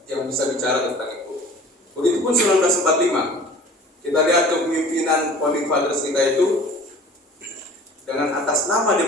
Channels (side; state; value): both; normal; correlation 0.45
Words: yang bisa bicara tentang itu. Begitupun 1945, kita lihat kepemimpinan founding fathers kita itu dengan atas nama